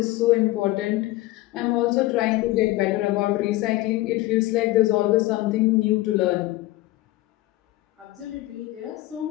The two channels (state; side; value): quieter; right; 18.1 dB